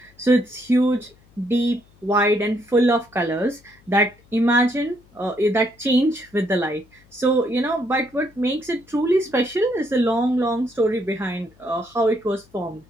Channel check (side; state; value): left; noise; hum, 30 dB below the sound